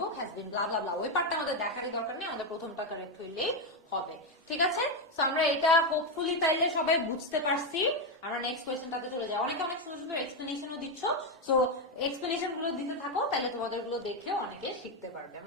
has been blah blah blah. ওই পার্টটা আমাদের দেখারই দরকার নেই, আমাদের প্রথমটা কারেক্ট হইলেই হবে। ঠিক আছে, সো আমরা এটা হোপফুলি তাইলে সবাই বুঝতে পারছি। আমরা নেক্সট কোয়েশ্চেনটাতে চলে যাই। অনেকে অনেক সুন্দর সুন্দর এক্সপ্লেনেশনও দিচ্ছ, সো এক্সপ্লেনেশন গুলো দিতে থাকো, তাহলে তোমাদের গুলো দেখলেও অনেকে শিখতে পারবে।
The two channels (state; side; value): normal; both; correlation 0.07